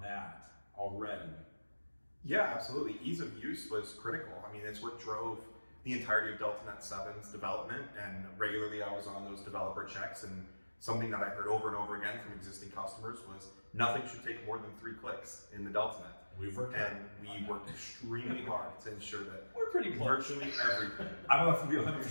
that already. Yeah, absolutely. Ease of use was critical. I mean, it's what drove the entirety of DeltaNet 7's development, and regularly I was on those developer checks, and something that I heard over and over again from existing customers was nothing should take more than 3 clicks in the DeltaNet. We worked extremely hard to ensure that We're pretty close. virtually everything. I don't have to be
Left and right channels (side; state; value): both; inverted; correlation -1.00